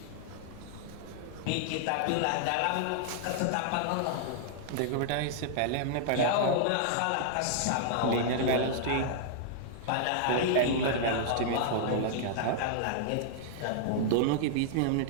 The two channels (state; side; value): different; both; correlation -0.01